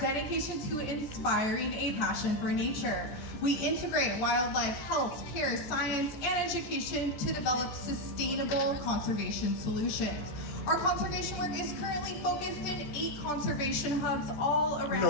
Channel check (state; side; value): late; right; 14 ms